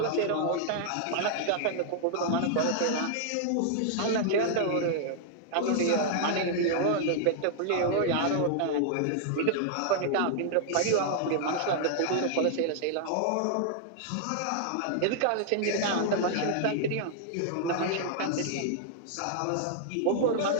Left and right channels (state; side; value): different; both; correlation -0.01